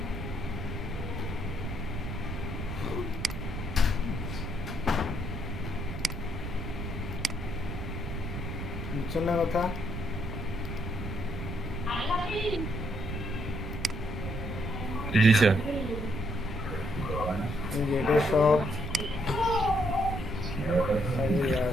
বুঝছেন না কথা? জি স্যার। এটা সব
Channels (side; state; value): right; noise; rumble, 5 dB below the sound